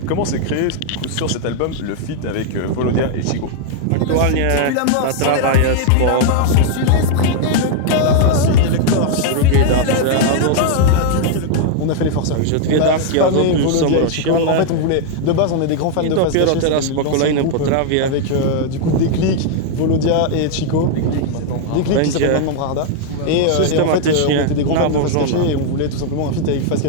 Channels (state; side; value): different; both; correlation 0.00